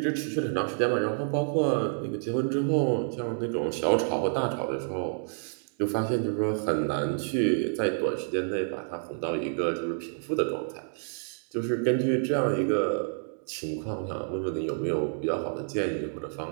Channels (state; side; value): silent; left; digital silence